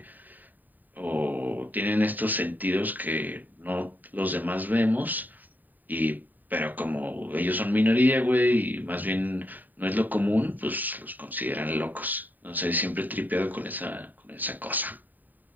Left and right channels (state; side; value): late; left; 0.087 ms